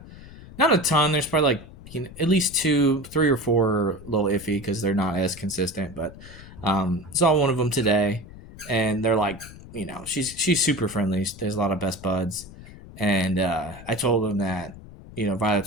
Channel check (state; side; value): noise; left; rumble, 17 dB below the sound